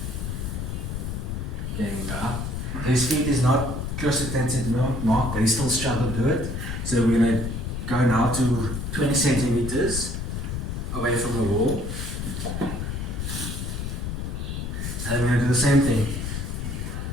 Okay, we go up. His feet is not close to 10 centimeter mark, but he still struggles to do it. So we're going to go now to 20 centimeters away from the wall. And we're going to do the same thing.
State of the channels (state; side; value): noise; left; rumble, 4 dB below the sound